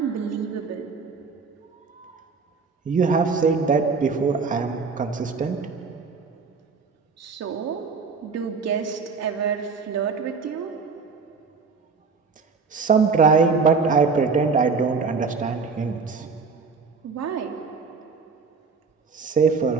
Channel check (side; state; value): left; quieter; 4.9 dB